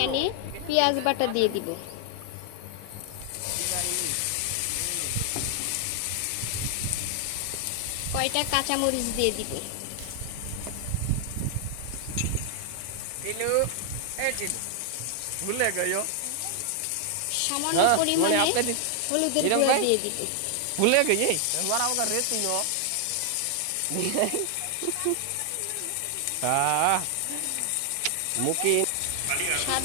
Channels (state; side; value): different; both; correlation 0.00